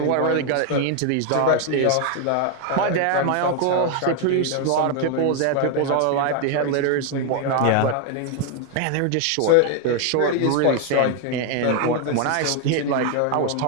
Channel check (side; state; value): both; different; correlation 0.01